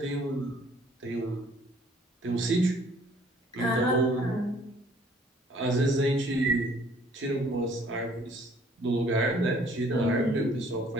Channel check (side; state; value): both; normal; correlation 0.58